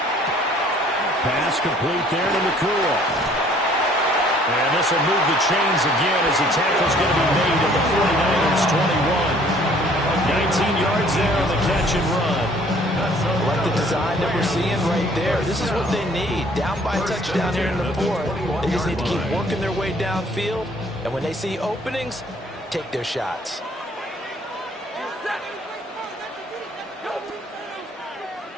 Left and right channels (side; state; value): both; normal; correlation 0.58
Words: Pass complete there to Nakua. And this will move the chains again as the tackle's going to be made at the 49ers 21. 19 yards there on the catch and run. Like the design that we're seeing right there. This is what they need. Down by a touchdown here in the fourth. They just need to keep working their way downfield. And when they see openings, take their shots.